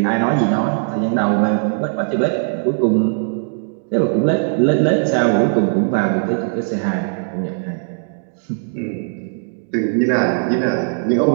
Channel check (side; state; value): left; silent; digital silence